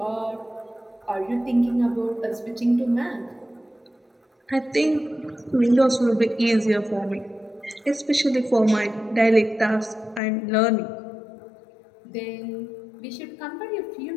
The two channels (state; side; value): drops out; right; at 10.2 s